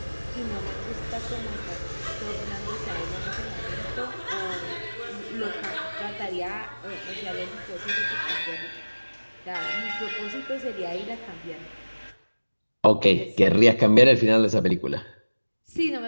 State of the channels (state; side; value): inverted; both; correlation -1.00